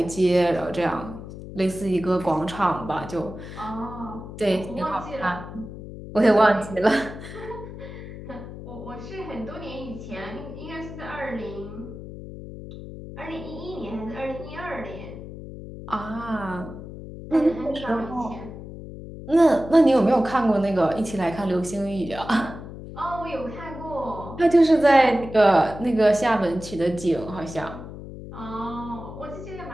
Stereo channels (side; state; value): left; noise; hum, 12 dB below the sound